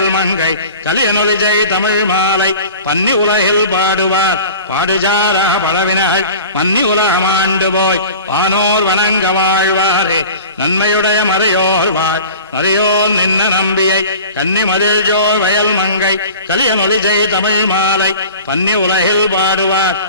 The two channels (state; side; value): inverted; both; correlation -0.39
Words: மங்கை கலியனொலிஜை தமிழ் மாலை பன்னி உலகில் பாடுவார் பாடுஜார பழவினகள் மன்னி உலகமாண்டு போய் வானோர் வணங்க வாழ்வாரே நன்மையுடைய மறையோர் வாழ் நரையோர் நின்ன நம்பியை கன்னி மதில் ஜோ வயல் மங்கை கலியனொலிஜை தமிழ் மாலை பன்னி உலகில் பாடுவார்